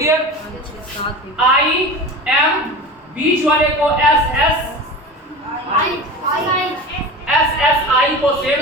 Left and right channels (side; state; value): both; normal; correlation 0.31